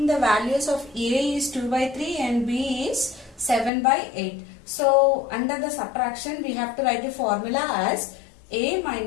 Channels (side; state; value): right; drops out; at 3.7 s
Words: the values of A is 2 by 3 and B is 7 by 8. So under the subtraction we have to write a formula as A